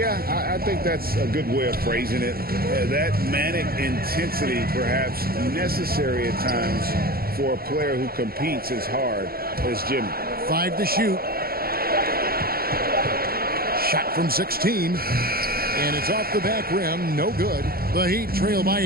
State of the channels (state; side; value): late; left; 0.44 ms